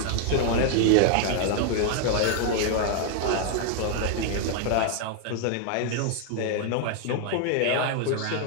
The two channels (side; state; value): both; different; correlation 0.00